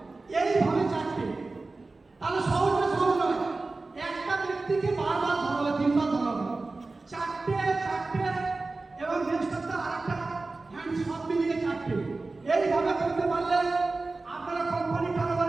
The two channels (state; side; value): quieter; left; 3.5 dB